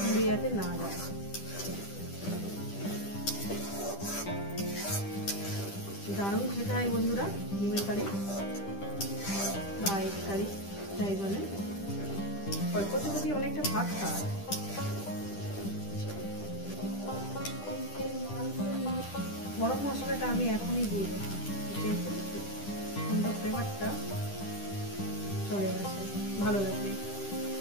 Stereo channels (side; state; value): right; late; 10 ms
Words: পুড়ে যাতে না যায়। দারুণ খেতে হয় বন্ধুরা ডিমের কারি বা এগ কারি যাই বলেন। অল্প যদি অনেকটা ভাত খাওয়া। গরম মশলাটা আমি এখনই দিয়ে দেবো, যেহেতু সুন্দর ফ্লেভারটা চলে আসে, ভালো লাগবে।